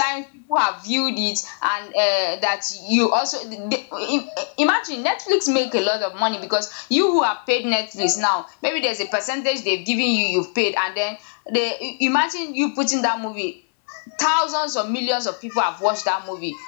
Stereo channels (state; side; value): silent; right; 64 dB below the other